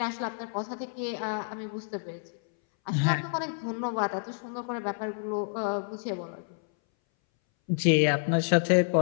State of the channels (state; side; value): silent; right; 58 dB below the other